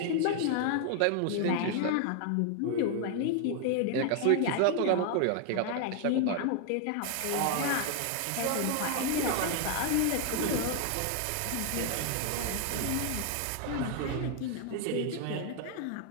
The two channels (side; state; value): both; different; correlation 0.00